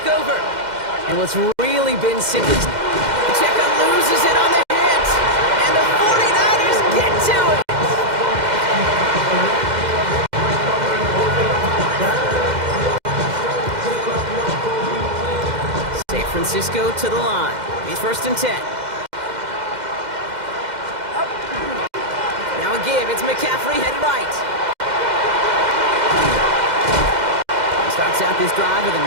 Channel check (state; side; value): late; left; 2.1 ms